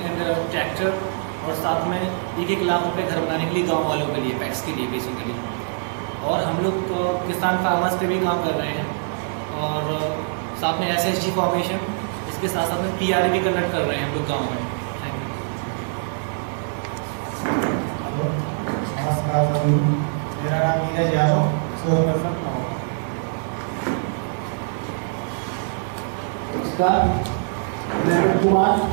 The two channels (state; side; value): silent; left; digital silence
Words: ट्रैक्टर और साथ में 1-1 लाख रुपये घर बनाने के लिए गाँव वालों के लिए, पैक्स के लिए बेसिकली। और हम लोग किसान फार्मर्स पे भी काम कर रहे हैं और साथ में SHG फॉर्मेशन, इसके साथ साथ में PRA भी कंडक्ट कर रहे हैं हम लोग गाँव में। Thank you. नमस्कार, मेरा नाम नीरज यादव, रिसोर्स पर्सन। नमस्कार, मैं कुमार